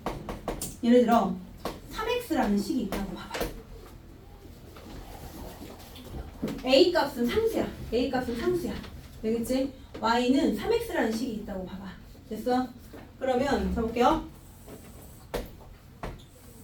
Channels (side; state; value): both; identical; correlation 1.00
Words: 예를 들어 3x라는 식이 있다고 봐봐. a 값은 상수야. 되겠지? y는 3x라는 식이 있다고 봐봐. 됐어? 그러면 해볼게요.